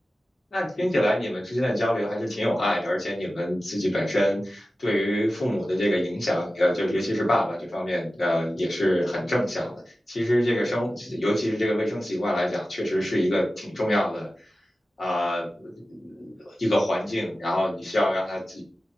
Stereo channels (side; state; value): both; normal; correlation 0.95